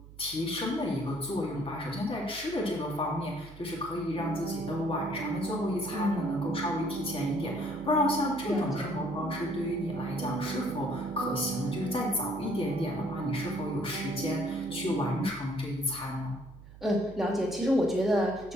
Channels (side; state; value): right; noise; hum, 18 dB below the sound